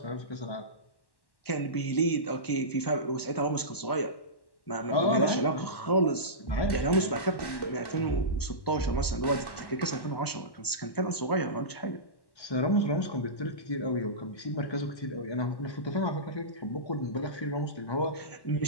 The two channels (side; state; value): right; late; 1.1 ms